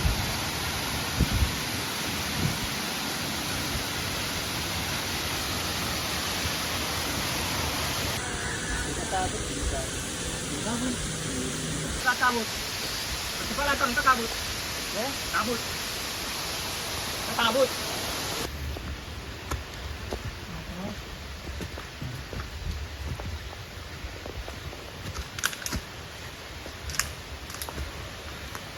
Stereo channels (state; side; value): identical; both; correlation 1.00